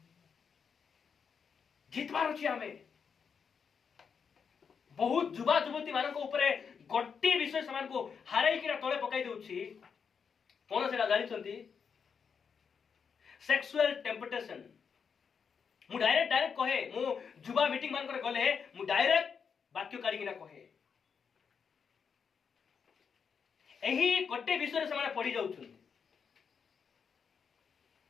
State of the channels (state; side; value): quieter; right; 6.4 dB